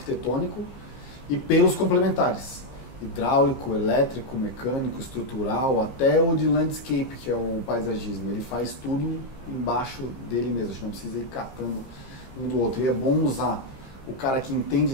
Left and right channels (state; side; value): late; right; 15 ms